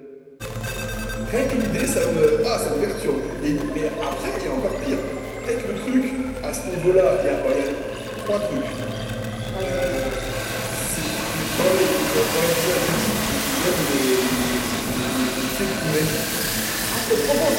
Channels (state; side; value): identical; both; correlation 1.00